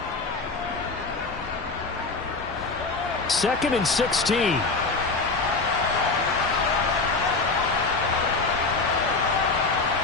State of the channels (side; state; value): right; quieter; 3.9 dB